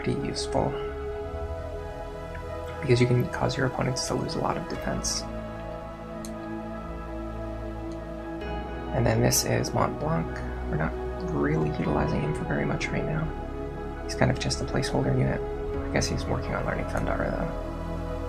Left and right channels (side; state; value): both; identical; correlation 1.00